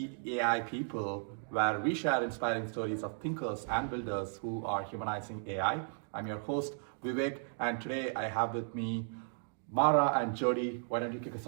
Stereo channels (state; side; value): silent; left; digital silence